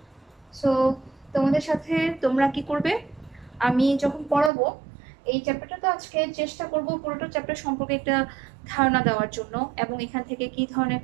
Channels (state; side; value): drops out; left; at 4.5 s